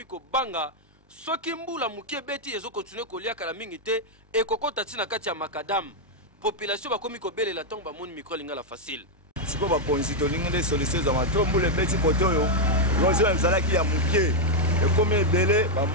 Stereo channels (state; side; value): normal; both; correlation 0.00